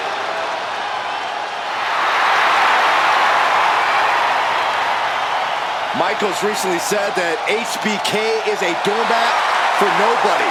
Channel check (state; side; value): identical; both; correlation 1.00